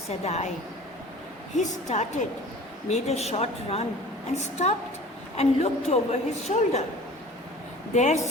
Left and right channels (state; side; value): normal; both; correlation 0.43